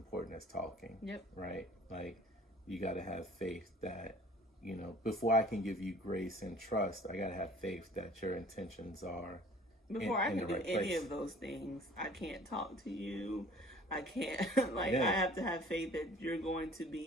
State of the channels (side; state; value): both; normal; correlation 0.49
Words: as talking. Yep. Right. Like, you got to have faith that, before I can give you grace and trust, I got to have faith that your intentions are before I can do any of those things. I can't talk to you. I can't, I have to have faith that you're going to